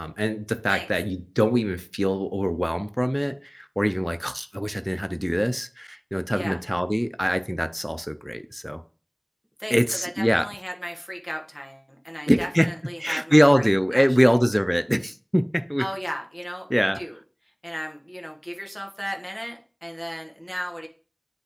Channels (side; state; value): both; identical; correlation 1.00